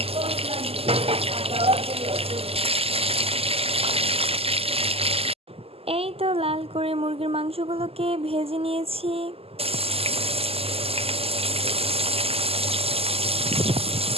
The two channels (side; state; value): left; late; 0.29 ms